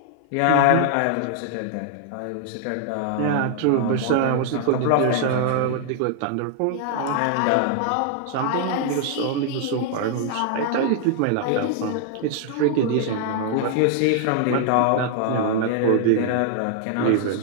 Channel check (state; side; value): different; both; correlation 0.00